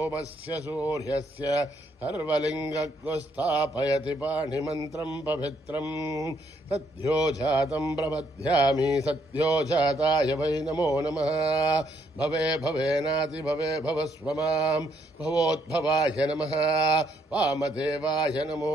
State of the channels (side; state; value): both; normal; correlation 0.72